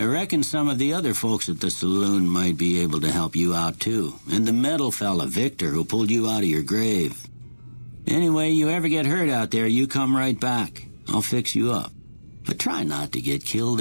reckon some of the other folks at the saloon might be able to help you out too. And the metal fella, Victor, who pulled you out of your grave. Anyway, you ever get hurt out there, you come right back. I'll fix you up. But try not to get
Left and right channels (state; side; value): inverted; both; correlation -1.00